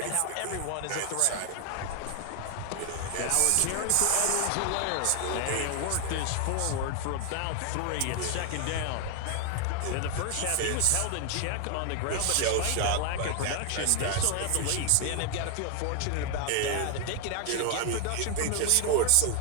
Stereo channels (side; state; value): both; different; correlation 0.00